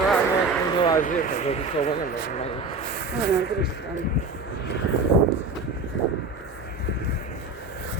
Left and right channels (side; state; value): left; quieter; 3.6 dB